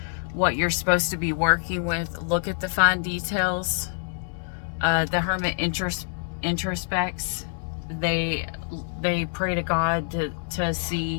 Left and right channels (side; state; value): right; silent; 60 dB below the other